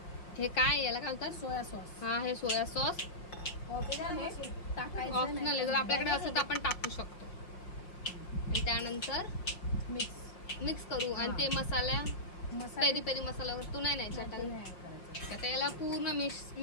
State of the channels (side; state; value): right; late; 5.9 ms